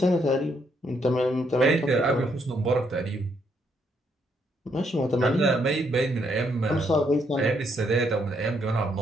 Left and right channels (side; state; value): both; normal; correlation 0.74